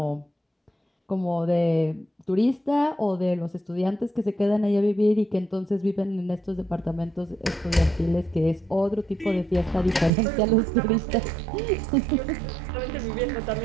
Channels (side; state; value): left; drops out; at 10.1 s